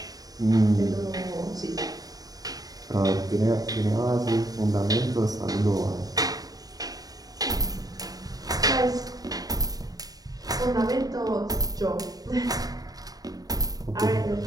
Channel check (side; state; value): left; late; 0.18 ms